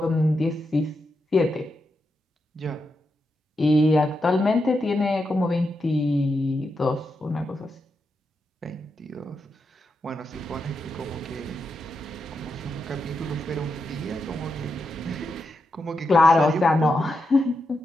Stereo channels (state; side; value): normal; both; correlation 0.86